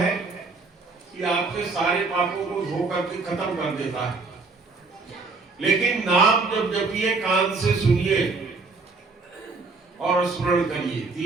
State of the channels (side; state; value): left; quieter; 4.0 dB